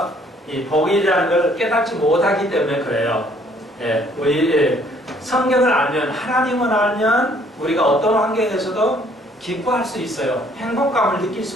이 복이라는 걸 깨닫지 못하기 때문에 그래요. 우리 성경을 알면, 하나님을 알면 우리가 어떤 환경에서도 기뻐할 수 있어요. 행복감을 느낄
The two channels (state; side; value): normal; both; correlation 0.61